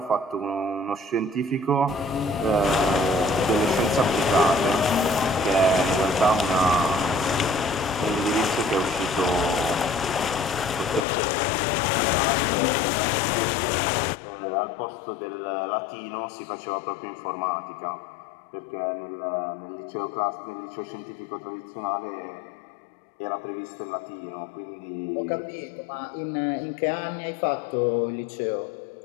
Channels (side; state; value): right; drops out; at 11.1 s